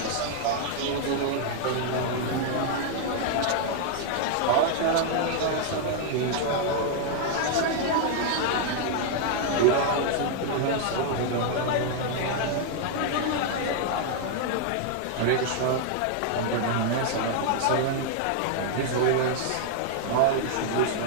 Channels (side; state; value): both; different; correlation 0.00